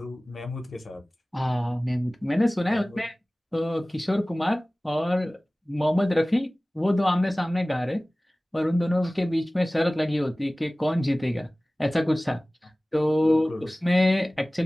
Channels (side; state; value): both; normal; correlation 0.98